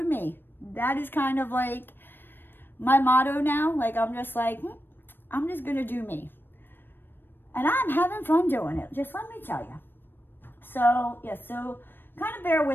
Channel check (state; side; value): late; right; 0.097 ms